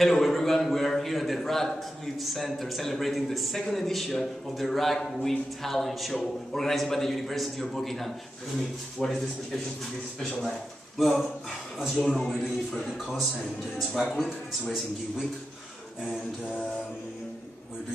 everyone, we are here at the Radcliffe Center celebrating the second edition of the Radcliffe Talent Show organized by the University of Buckingham. Tell me, what is the expectation for this special night? Well, as you all know, we're doing it for a good cause, and it's Radcliffe, it's Racing Geek Week, and we're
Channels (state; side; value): normal; both; correlation 0.89